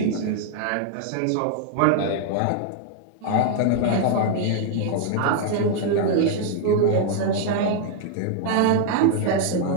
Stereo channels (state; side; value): different; both; correlation 0.00